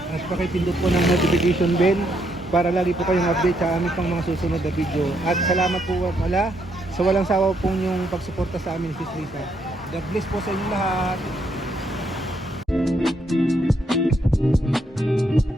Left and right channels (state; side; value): normal; both; correlation 0.75